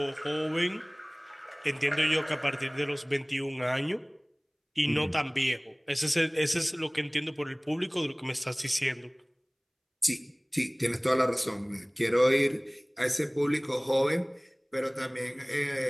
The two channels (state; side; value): identical; both; correlation 1.00